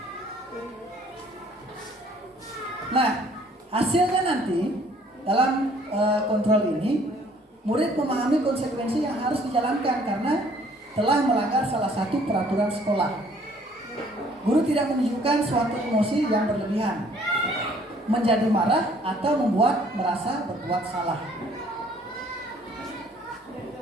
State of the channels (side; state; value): both; normal; correlation 0.59